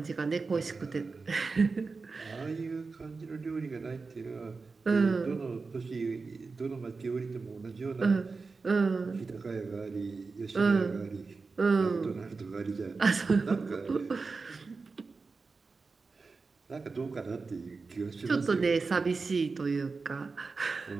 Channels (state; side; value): quieter; left; 4.3 dB